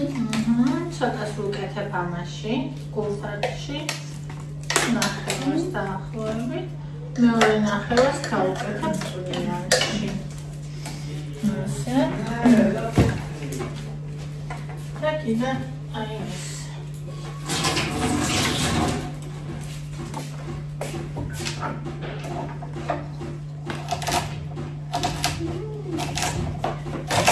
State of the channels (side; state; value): both; identical; correlation 1.00